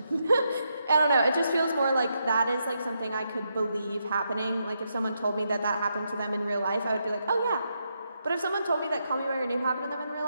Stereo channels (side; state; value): both; inverted; correlation -0.81